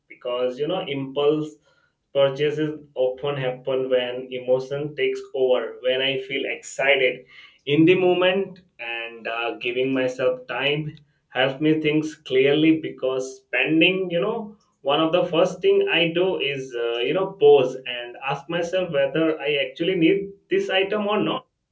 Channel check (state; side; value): identical; both; correlation 1.00